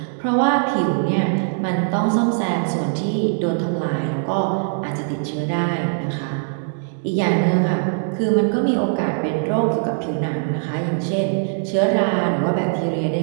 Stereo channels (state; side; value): silent; left; digital silence